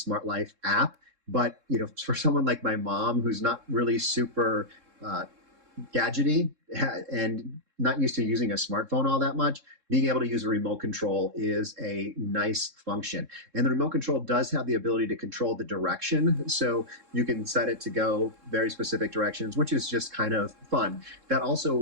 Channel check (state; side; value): late; left; 3.7 ms